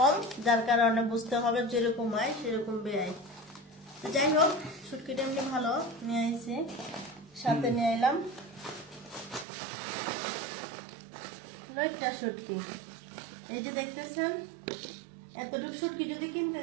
যার কারণে বুঝতে হবে যেরকম হয় সেরকম ব্যয়। যাই হোক, শুটকিটা এমনি ভালো নিয়ে এসেছি, সাথে নিয়ে এলাম লইট্টা শুটকি। এই যে দেখতেছেন, এতটুকু শুটকি যদি কিনতে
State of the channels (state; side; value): drops out; left; at 9.5 s